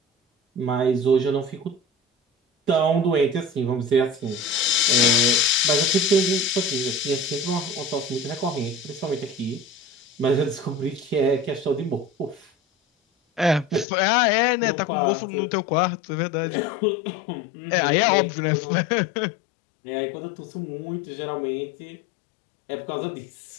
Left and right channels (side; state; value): right; drops out; at 13.9 s